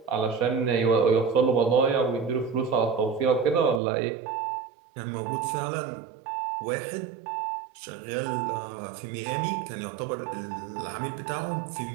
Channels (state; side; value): drops out; left; at 3.8 s